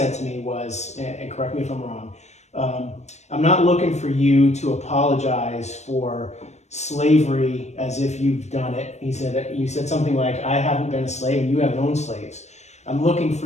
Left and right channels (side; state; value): right; late; 0.33 ms